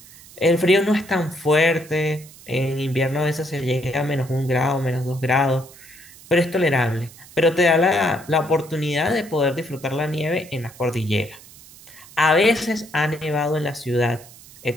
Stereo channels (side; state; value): right; noise; hiss, 21 dB below the sound